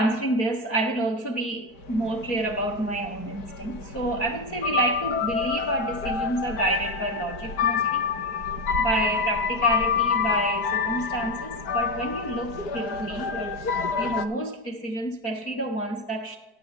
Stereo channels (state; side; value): late; right; 4.6 ms